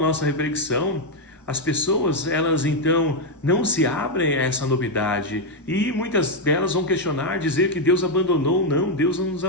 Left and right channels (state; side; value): normal; both; correlation 0.01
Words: reflexão, as pessoas, elas então não se abrem a essa novidade e muitas delas vão questionar, dizer que Deus abandonou. Não, Deus não nos